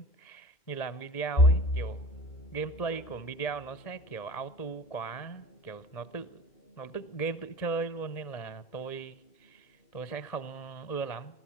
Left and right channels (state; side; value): late; right; 1.7 ms